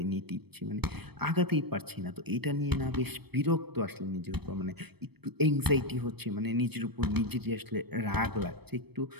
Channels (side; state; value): left; late; 0.97 ms